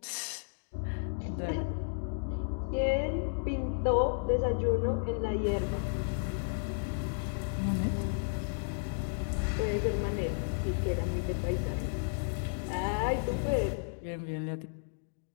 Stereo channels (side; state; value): right; silent; digital silence